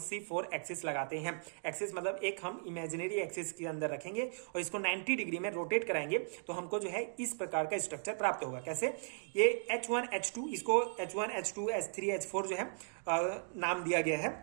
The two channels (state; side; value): silent; left; digital silence